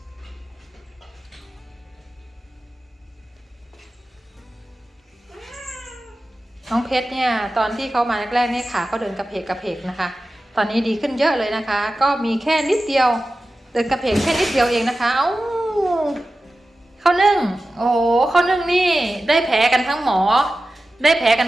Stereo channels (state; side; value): normal; both; correlation 0.94